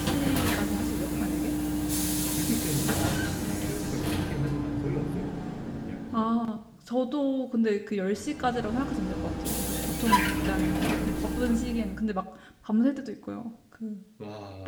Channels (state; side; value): identical; both; correlation 1.00